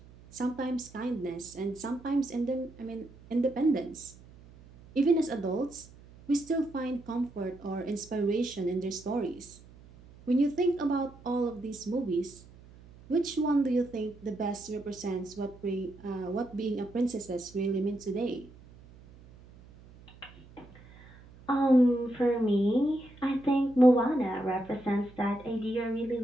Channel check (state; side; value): noise; right; hum, 22 dB below the sound